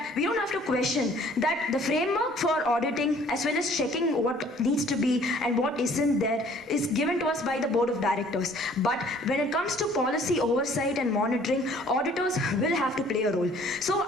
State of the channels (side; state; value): both; normal; correlation 0.56